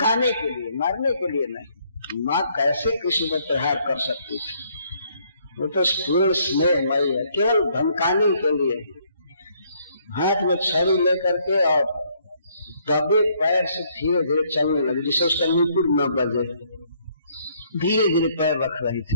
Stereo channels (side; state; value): both; inverted; correlation -0.67